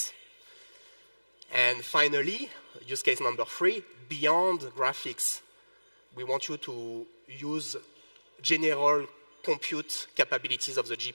And finally, use case number 3, beyond graphics, we want you to use general compute capabilities of the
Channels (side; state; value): both; inverted; correlation -1.00